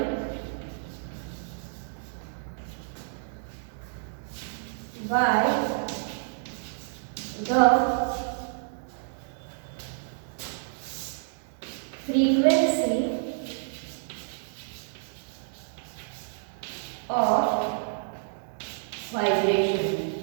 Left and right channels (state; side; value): silent; left; digital silence